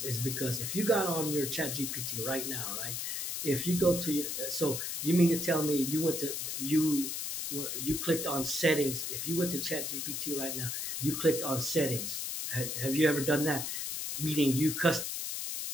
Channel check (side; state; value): left; noise; hiss, 3 dB below the sound